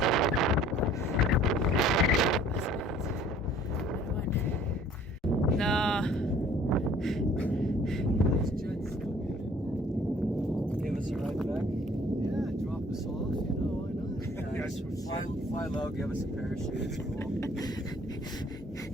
No. Give us a ride back. Yeah, drop us off, you know, why not? Yeah, just fly low, give us a parachute. It's cool.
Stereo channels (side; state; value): both; normal; correlation 0.55